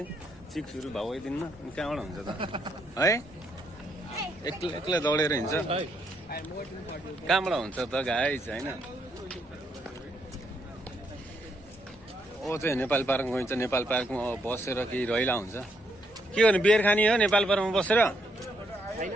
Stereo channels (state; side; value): normal; both; correlation 0.75